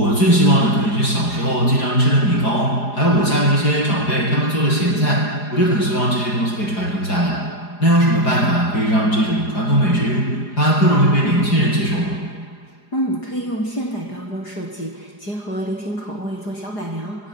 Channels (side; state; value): right; late; 4.9 ms